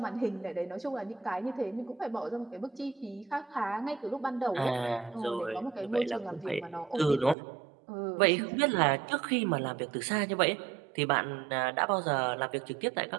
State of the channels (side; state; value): left; drops out; at 7.4 s